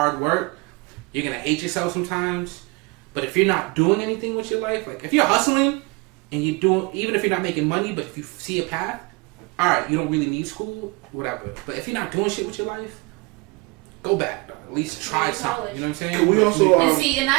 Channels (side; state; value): left; quieter; 26.3 dB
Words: work. You're going to hate yourself sometimes. But if you're not doing anything with your life, like, if you're hustling and you're doing, even if you're not making money, but if you see a path, all right, you don't really need school, whatever. But if you're not doing shit with your life, go back. At least try something. You know what I'm saying? Can we also... and